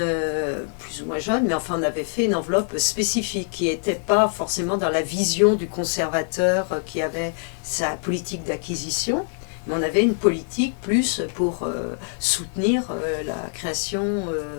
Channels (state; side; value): silent; right; 59 dB below the other